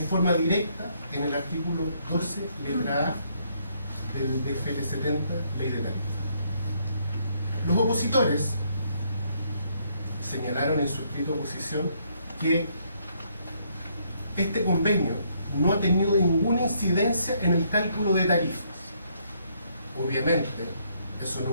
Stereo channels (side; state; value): both; inverted; correlation -0.70